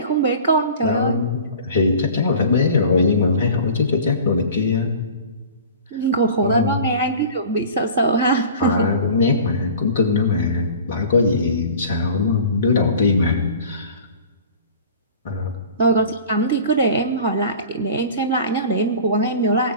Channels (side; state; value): both; inverted; correlation -0.41